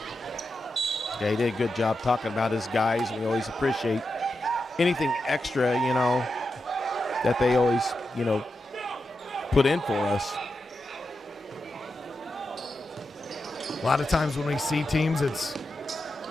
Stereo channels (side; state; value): both; normal; correlation 0.88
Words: Yeah, he did a good job talking about his guys. We always appreciate anything extra, you know, that they always, you know, put in for us. A lot of times when we see teams, it's,